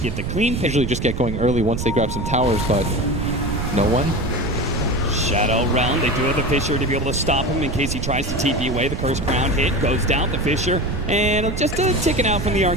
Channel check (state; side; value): noise; right; rumble, 4 dB below the sound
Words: get the clean pick. Usually just get going early once they grab some towers, but no one. Shadow Realm. They do have the Fisher to be able to stop him in case he tries to TP away. The Curse Crown hit goes down. The Fisher and just ticking out from the